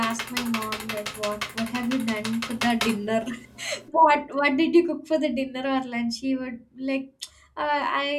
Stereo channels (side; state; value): both; identical; correlation 1.00